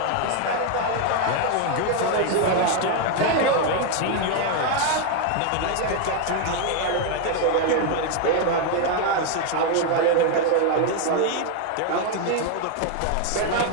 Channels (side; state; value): both; different; correlation 0.01